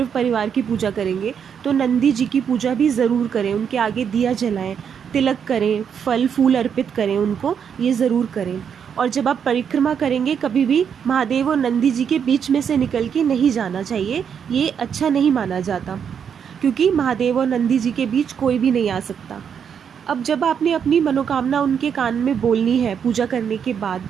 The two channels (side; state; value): left; quieter; 7.6 dB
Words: परिवार की पूजा करेंगे, तो नंदी जी की पूजा भी ज़रूर करें, उनके आगे दिया जलाएं, तिलक करें, फल फूल अर्पित करें उनको, ये ज़रूर करें। और जब आप परिक्रमा करेंगे, कभी भी महादेव और नंदी जी के बीच में से निकल के नहीं जाना चाहिए, ये अच्छा नहीं माना जाता, क्योंकि महादेव और नंदी जी के बीच कोई भी नहीं आ सकता। अब जब आपने अपनी मनोकामना उनके कान में बोलनी है पूजा करने के बाद,